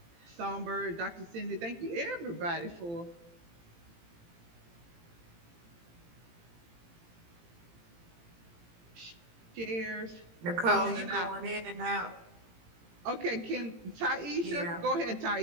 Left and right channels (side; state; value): left; late; 18 ms